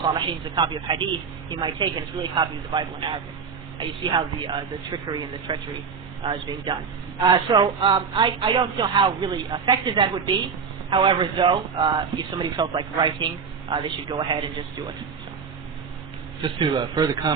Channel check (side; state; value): left; quieter; 5.9 dB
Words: al-Salihin, it's a copy of Hadith. He might take it, it's really a copy of the Bible in Arabic. You see how the trickery and the treachery is being done. So I don't know how really effective that would be. However, though, if somebody felt like writing, they should go ahead and just do it. So. Just to further